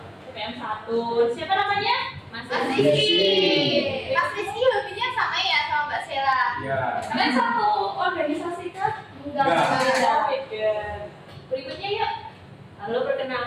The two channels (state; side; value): identical; both; correlation 1.00